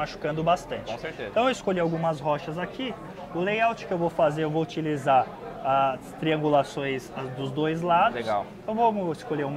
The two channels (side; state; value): both; identical; correlation 1.00